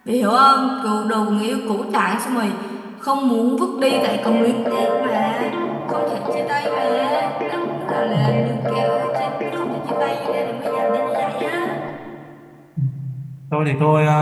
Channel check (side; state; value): both; identical; correlation 1.00